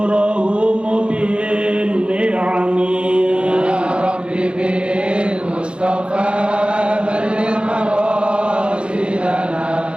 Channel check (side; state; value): left; late; 0.057 ms